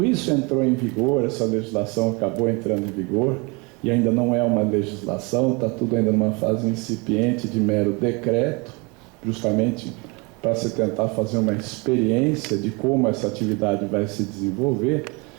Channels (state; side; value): quieter; left; 29.0 dB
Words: isso entrou em vigor, essa legislação acabou entrando em vigor, e ainda não é uma legislação, está tudo ainda numa fase incipiente de mero decreto, justamente para se tentar fazer uma experiência de como essa atividade vai se desenvolver.